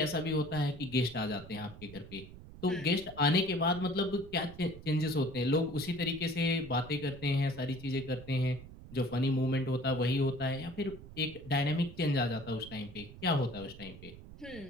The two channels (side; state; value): right; noise; rumble, 16 dB below the sound